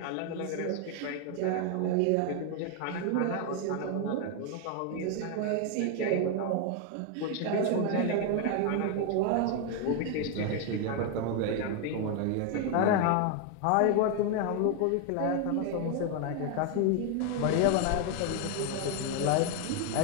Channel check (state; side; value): different; both; correlation 0.01